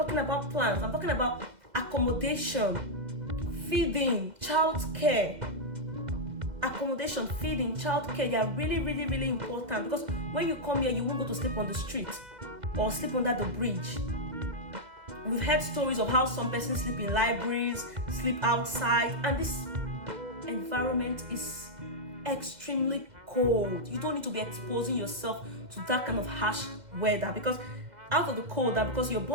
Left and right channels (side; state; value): left; late; 2.0 ms